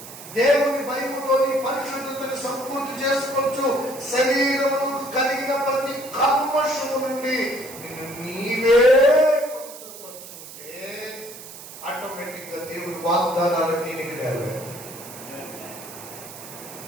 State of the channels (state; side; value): noise; right; hiss, 14 dB below the sound